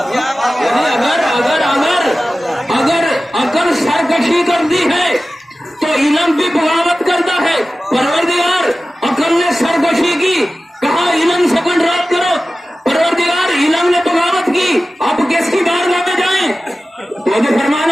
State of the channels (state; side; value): normal; both; correlation 0.95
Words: اگر عقل سرکشی کرتی ہے تو علم بھی بغاوت کرتا ہے. پروردگار عقل نے سرکشی کی، کہا علم سے کنٹرول کرو. پروردگار علم نے بغاوت کی. اب کس کی بارگاہ میں جائیں؟ توجہ